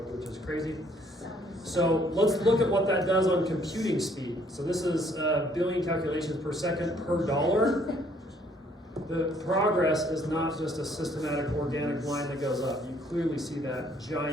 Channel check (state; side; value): normal; both; correlation 0.64